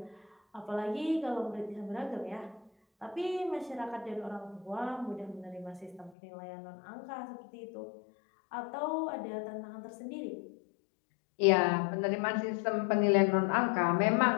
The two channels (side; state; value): right; drops out; at 6.1 s